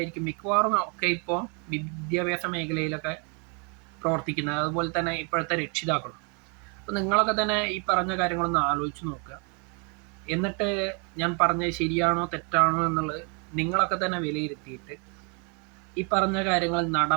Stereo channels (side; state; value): left; quieter; 35.6 dB